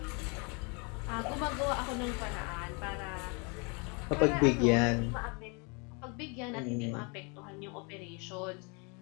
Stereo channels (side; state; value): right; quieter; 32.8 dB